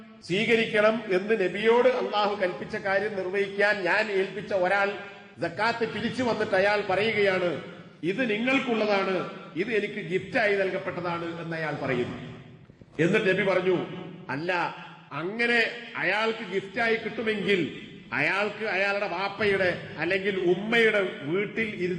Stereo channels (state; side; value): identical; both; correlation 1.00